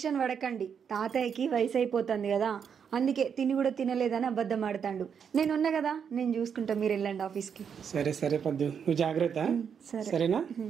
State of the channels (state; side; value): quieter; left; 7.2 dB